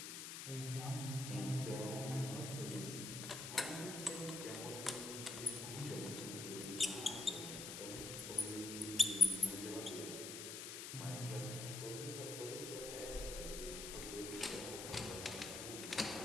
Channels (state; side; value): noise; left; hiss, 6 dB below the sound